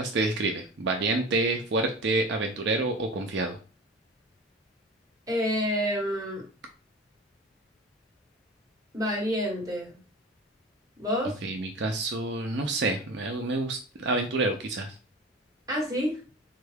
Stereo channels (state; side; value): normal; both; correlation 0.35